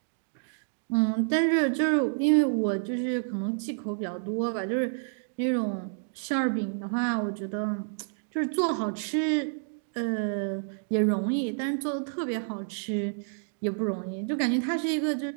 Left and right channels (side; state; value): left; silent; digital silence